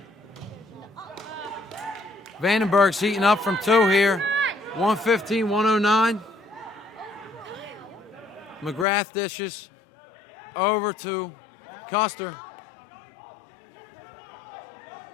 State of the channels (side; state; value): right; drops out; at 8.8 s